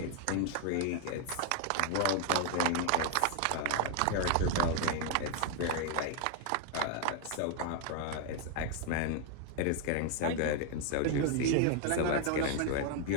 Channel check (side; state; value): both; different; correlation 0.01